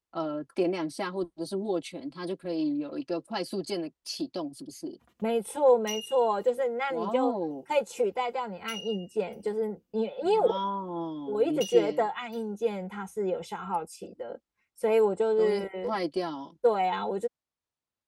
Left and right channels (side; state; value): both; identical; correlation 1.00